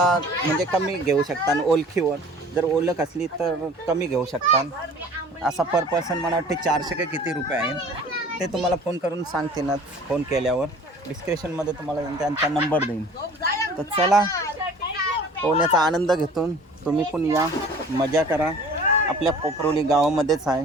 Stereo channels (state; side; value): normal; both; correlation 0.47